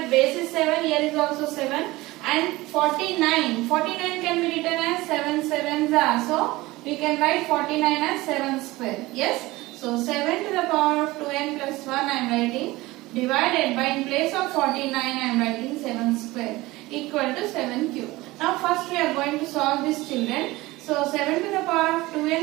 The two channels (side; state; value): left; quieter; 19.8 dB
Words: base is 7, here is also 7, and 49 can be written as 7 sevens are. So we can write 49 as 7 square. Yes. So 7 to the power of 2n plus 1 I am writing, divided by, in place of 49 I am writing 7 square equal to 7 cube. Now first we are going to solve this, children. So 7 to the power of